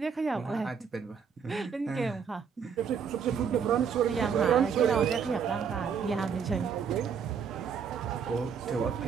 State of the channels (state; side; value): quieter; left; 6.7 dB